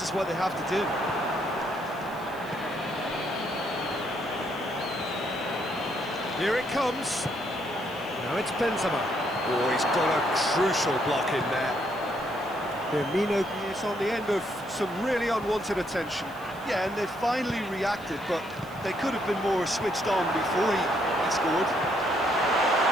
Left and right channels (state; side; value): noise; left; hiss, 23 dB below the sound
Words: is what they have to do. Here it comes. Now it's Benzema. Oh, he's got a crucial block in there. Firmino is on the end of some really unwanted attention. Yeah, and they finally reacted, but they could have been more switched on before he scored.